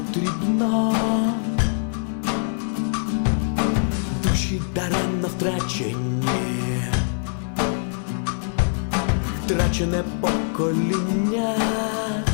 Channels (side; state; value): right; silent; 63 dB below the other